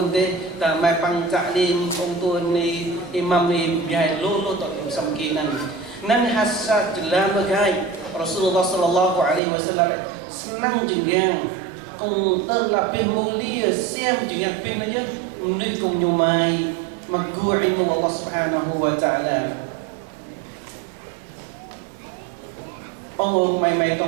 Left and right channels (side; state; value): left; drops out; at 9.4 s